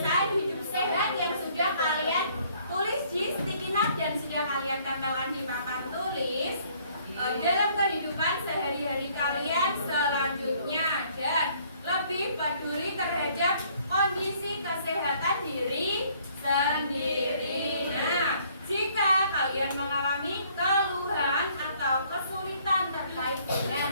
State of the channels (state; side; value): inverted; both; correlation -0.62